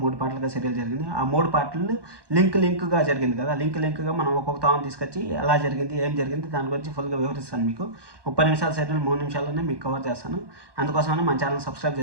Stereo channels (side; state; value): left; late; 1.2 ms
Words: 3 పార్ట్లుగా సీరియల్ జరిగింది. ఆ 3 పార్ట్లు లింక్గా జరిగింది కదా. లింక్గా మనం ఒక్కొక్క తాను తీసుకొచ్చి ఎలా జరిగింది ఏం జరిగింది దాని గురించి ఫుల్గా వివరిస్తాను. మీకు 30 నిమిషాల సీరియల్ 3 నిమిషాల్లోనే మీకు కవర్ చేస్తాను. అందుకోసమని మన ఛానల్ సబ్స్క్రైబ్